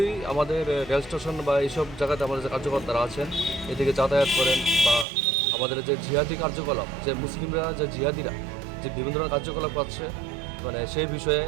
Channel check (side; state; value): left; drops out; at 5.1 s